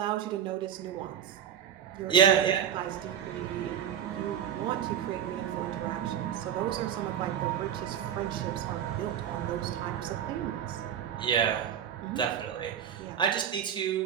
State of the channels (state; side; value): quieter; left; 9.2 dB